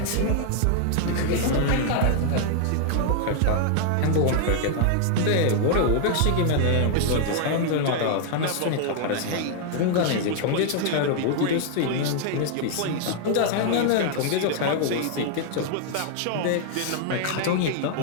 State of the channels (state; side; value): different; both; correlation 0.00